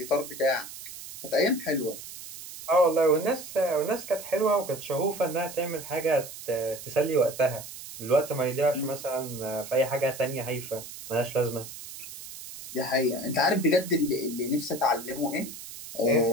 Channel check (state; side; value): noise; right; hiss, 13 dB below the sound